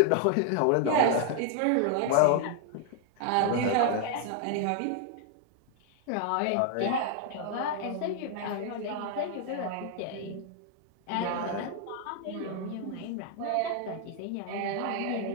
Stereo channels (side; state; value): both; different; correlation 0.00